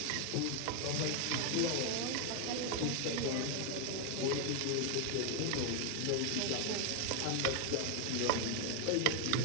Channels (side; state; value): both; different; correlation 0.00